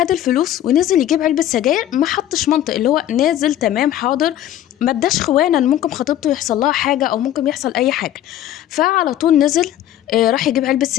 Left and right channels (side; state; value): right; quieter; 12.2 dB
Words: الفلوس ونزل يجيب علبه سجاير، ما حطش منطق، اللي هو نازل تمام حاضر، ما اداش خوانا ان ممكن خطيبته يحصل لها حاجه او ممكن يحصل اي حاجه. فعلى طول نزل راح يجيب علبه